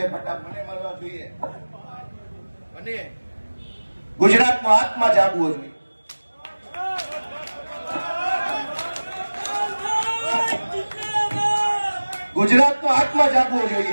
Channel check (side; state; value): both; inverted; correlation -1.00